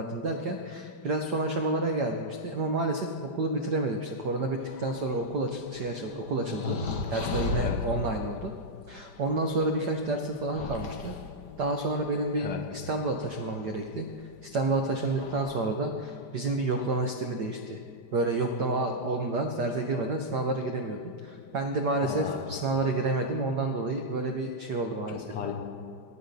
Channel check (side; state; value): left; late; 5.0 ms